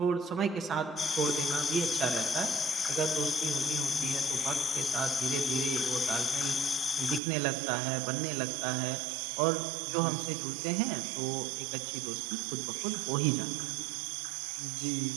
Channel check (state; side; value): drops out; left; at 7.2 s